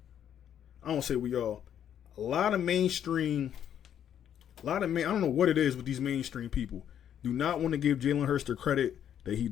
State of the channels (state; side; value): quieter; right; 9.6 dB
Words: don't say we all, a lot of mainstream, I don't know what it is with these mainstream people, do not want to give Jalen Hurts the credit that he